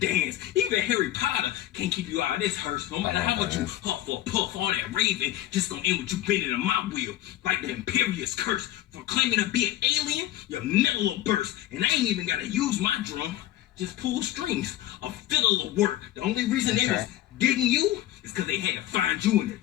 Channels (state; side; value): quieter; right; 13.9 dB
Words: Even Harry Potter can't keep you out of this hearse. No matter how much you huff or puff, all that raving just gonna end with you bending in my wheel. Like the Imperious curse. For claiming to be an alien, your metal will burst. And I ain't even gotta use my drum. Just pull strings. A fiddle will work. The only reason they was digging you is because they had to find you in the